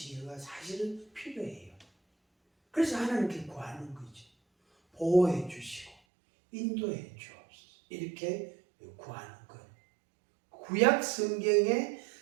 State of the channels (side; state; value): left; drops out; at 6.0 s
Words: 사실은 필요해요. 그래서 하나님께 구하는 거죠. 보호해 주시고 인도해 주옵소서. 이렇게 구하는 거예요. 구약 성경에